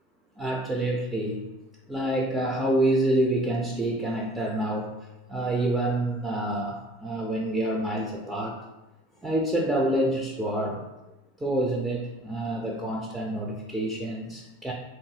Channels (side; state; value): both; normal; correlation 0.54